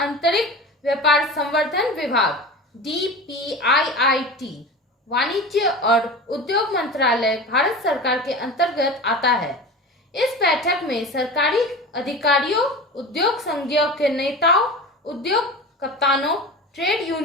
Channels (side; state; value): both; normal; correlation 0.31